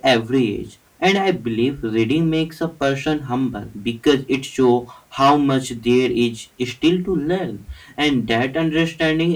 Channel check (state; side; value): identical; both; correlation 1.00